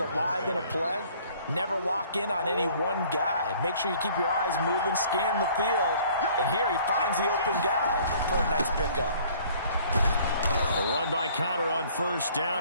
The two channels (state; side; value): inverted; both; correlation -0.55